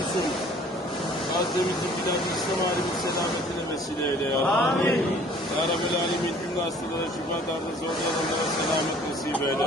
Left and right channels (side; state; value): both; normal; correlation 0.53